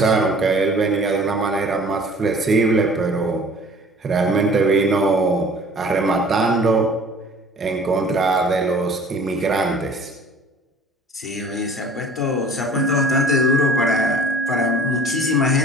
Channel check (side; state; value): both; normal; correlation 0.49